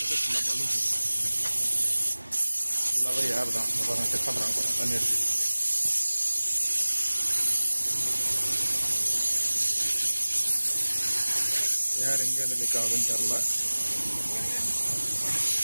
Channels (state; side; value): inverted; both; correlation -1.00